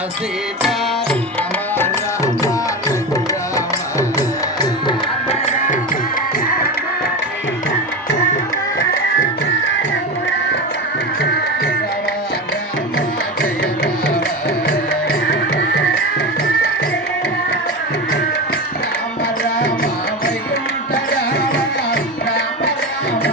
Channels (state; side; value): normal; both; correlation 0.22